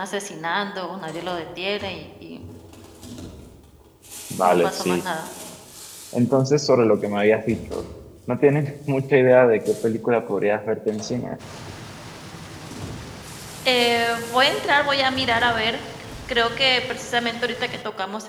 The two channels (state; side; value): identical; both; correlation 1.00